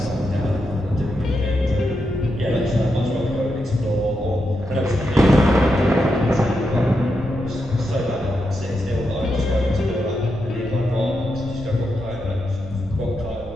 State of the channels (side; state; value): right; noise; rumble, 16 dB below the sound